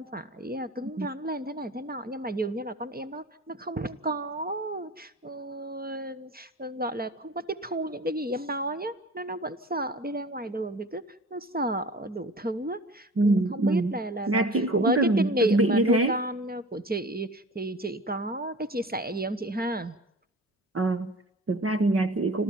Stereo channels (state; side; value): normal; both; correlation 0.40